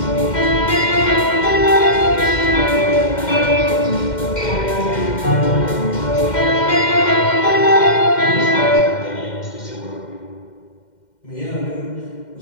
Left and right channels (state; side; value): late; right; 2.1 ms